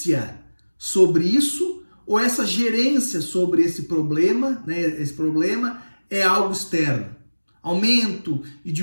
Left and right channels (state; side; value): inverted; both; correlation -1.00